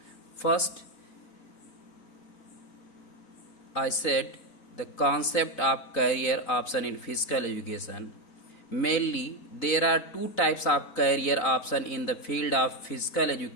First, I said the concept of career option in physical education. Mainly, there are two types of career option in the field of physical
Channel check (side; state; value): right; late; 4.0 ms